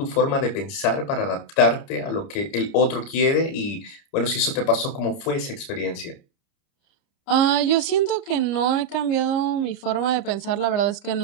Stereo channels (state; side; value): late; right; 30 ms